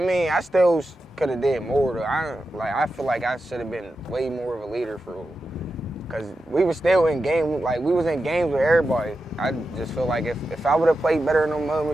I still could have did more though. I feel like I should have been way more of a leader for real. Cause we were still in game, like we was in games with everybody. I just feel like if I would have played better in those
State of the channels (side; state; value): both; normal; correlation 0.90